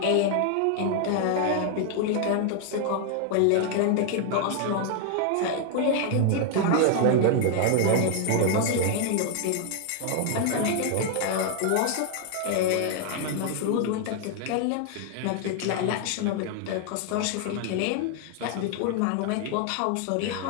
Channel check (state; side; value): different; both; correlation 0.00